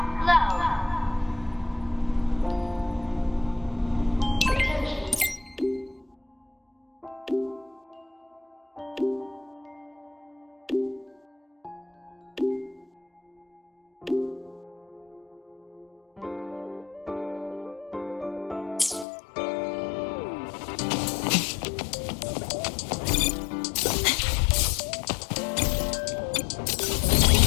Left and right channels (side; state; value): right; drops out; at 19.1 s